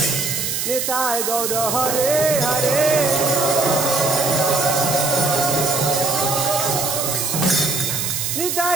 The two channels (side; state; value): right; noise; hiss, 2 dB below the sound